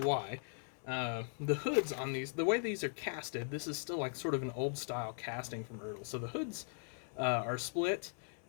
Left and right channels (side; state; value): right; silent; 52 dB below the other